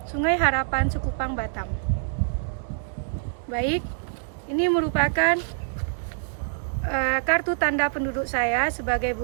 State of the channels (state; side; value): silent; left; digital silence